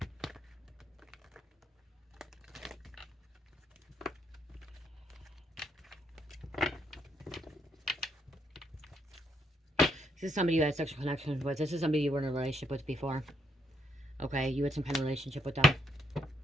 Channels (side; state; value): both; normal; correlation 0.75